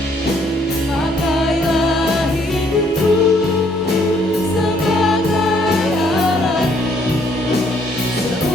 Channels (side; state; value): both; normal; correlation 0.66